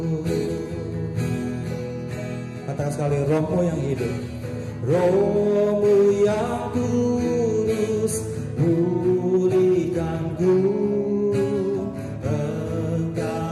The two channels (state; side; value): identical; both; correlation 1.00